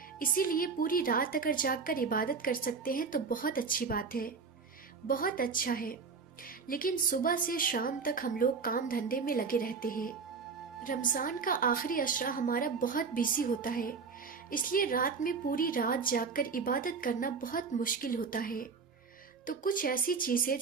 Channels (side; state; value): left; quieter; 5.1 dB